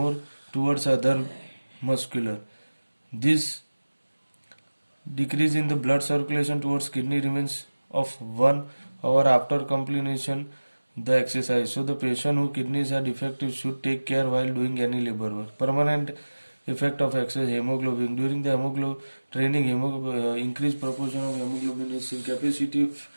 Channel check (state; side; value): inverted; both; correlation -1.00